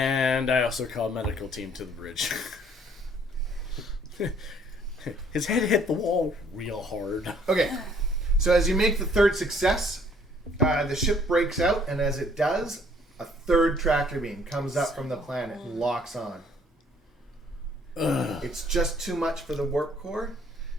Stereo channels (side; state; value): both; normal; correlation 0.61